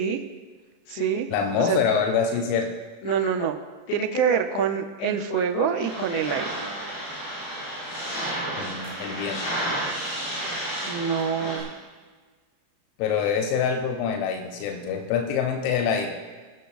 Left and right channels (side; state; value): right; late; 35 ms